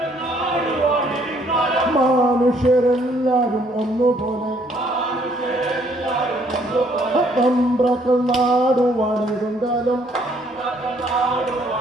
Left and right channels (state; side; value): normal; both; correlation 0.65